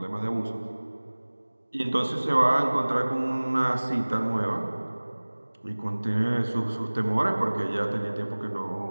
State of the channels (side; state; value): both; inverted; correlation -1.00